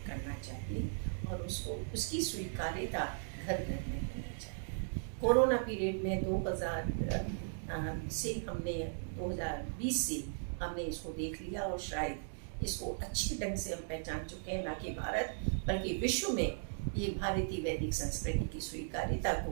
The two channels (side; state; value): left; silent; digital silence